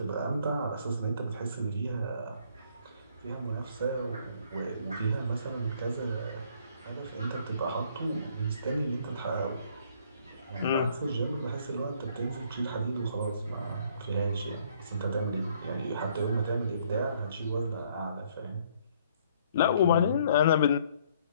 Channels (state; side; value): inverted; both; correlation -0.64